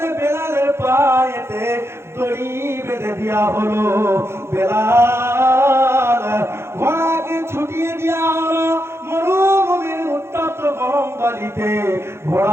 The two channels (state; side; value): late; left; 0.12 ms